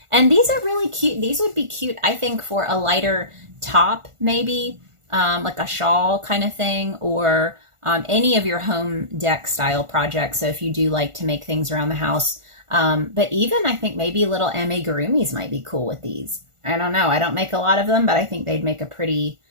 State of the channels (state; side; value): late; left; 1.4 ms